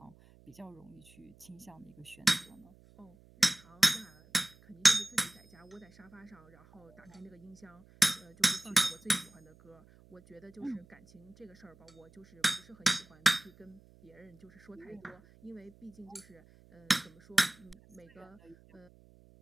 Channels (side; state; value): right; noise; hum, 25 dB below the sound